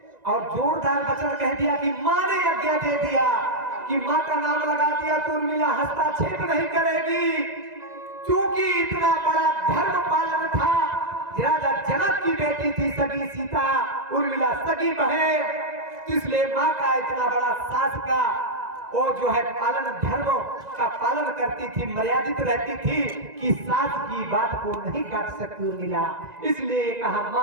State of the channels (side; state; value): left; late; 2.0 ms